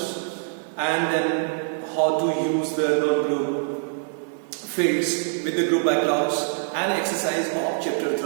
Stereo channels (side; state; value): left; silent; digital silence